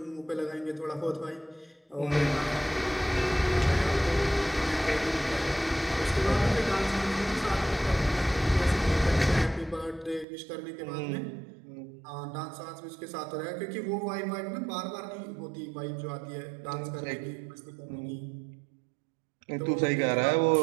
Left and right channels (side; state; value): left; drops out; at 10.2 s